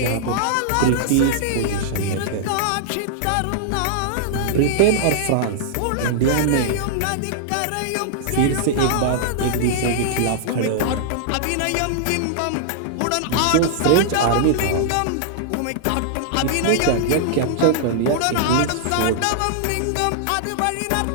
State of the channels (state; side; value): different; both; correlation -0.01